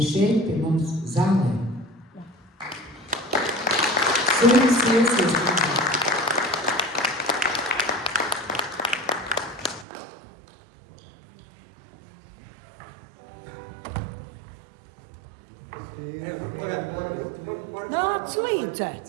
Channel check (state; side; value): drops out; left; at 9.9 s